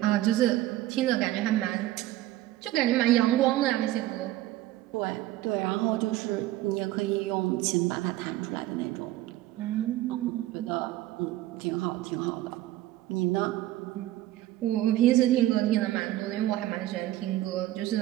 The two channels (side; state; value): left; quieter; 15.3 dB